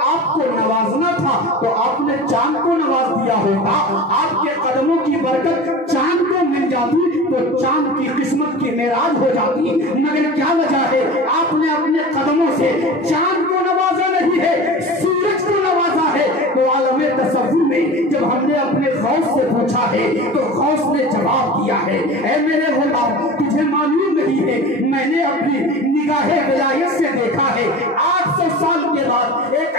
آپ کو نوازنا تھا تو آپ نے چاند کو نواز دیا ہوتا، آپ کے قدموں کی برکت چاند کو مل جاتی تو چاند کی قسمت کی معراج ہو جاتی، مگر کیا وجہ ہے آپ نے اپنے قدموں سے چاند کو نوازا نہیں ہے، سورج کو نوازا ہے۔ تو عالم تصور میں جب ہم نے اپنے غوث سے پوچھا ہے تو غوث نے جواب دیا ہے، اے میرے غلام تجھے معلوم نہیں ہے، میں نے اپنی نگاہ ولایت سے دیکھا ہے 800 سال کے بعد ایک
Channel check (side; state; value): both; normal; correlation 0.34